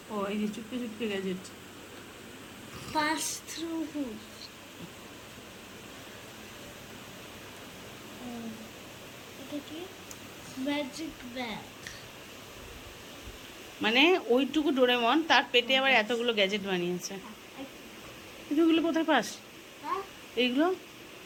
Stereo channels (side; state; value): both; identical; correlation 1.00